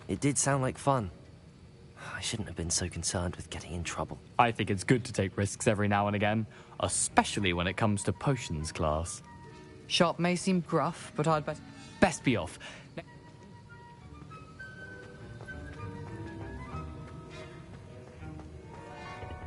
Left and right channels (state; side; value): identical; both; correlation 1.00